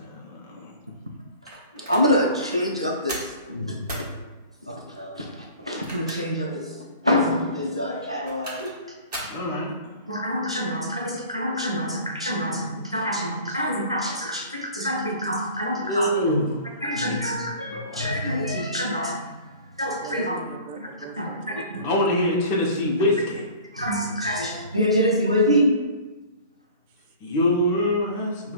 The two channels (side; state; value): both; inverted; correlation -0.44